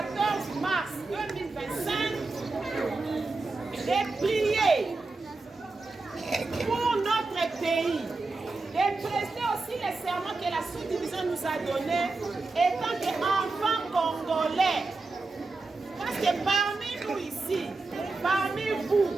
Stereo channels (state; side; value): quieter; left; 3.6 dB